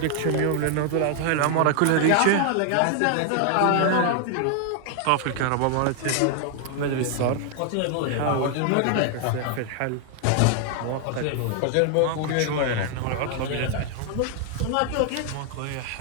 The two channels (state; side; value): different; both; correlation 0.00